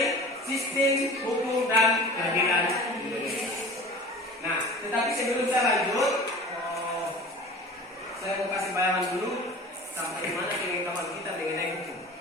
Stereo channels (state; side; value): normal; both; correlation 0.39